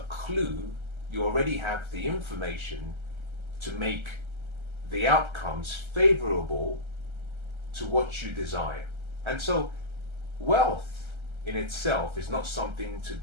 clue, you already have the information to make the outcomes favorable to what you desire. And so, wealth in itself is not something to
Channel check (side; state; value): left; late; 1.3 ms